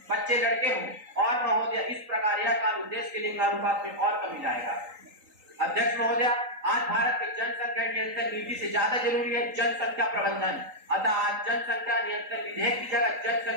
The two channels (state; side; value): late; left; 3.8 ms